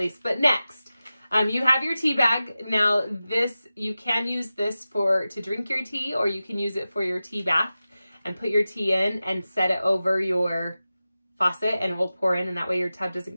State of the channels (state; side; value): inverted; both; correlation -0.95